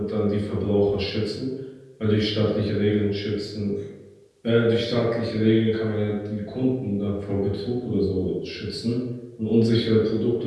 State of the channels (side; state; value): both; identical; correlation 1.00